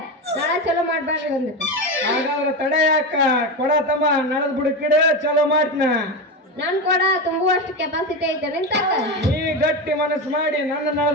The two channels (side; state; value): both; normal; correlation 0.17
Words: ನಾಳೆ ಚಲೋ ಮಾಡ್ಬೇಡ್ರಿ ಬಂದಿತ್ತು. ಹಾಗಾದ್ರೆ ತಡೆ ಯಾಕ ಕೊಡ ತಮ್ಮ ನಡದ್ ಬುಡಕಿಡ ಚಲೋ ಮಾಡ್ತೀನ. ನನ್ ಕೊಡ ತುಂಬುವಷ್ಟು ಕೆಪಾಸಿಟಿ ಐತೆ ನಿಂತಾಕ. ನೀ ಗಟ್ಟಿ ಮನಸ್ಸು ಮಾಡಿ ನನ್ನ